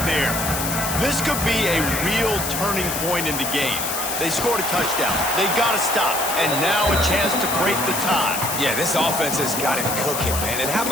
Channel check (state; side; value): noise; left; hiss, 3 dB below the sound